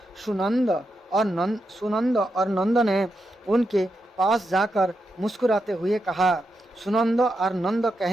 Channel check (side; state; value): both; normal; correlation 0.85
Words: सुनंद और नंद ने उनके पास जाकर मुस्कुराते हुए कहा। सुनंद और नंद